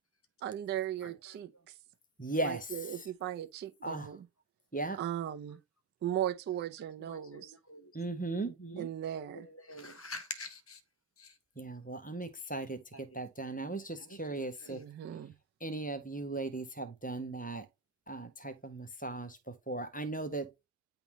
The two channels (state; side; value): quieter; left; 4.5 dB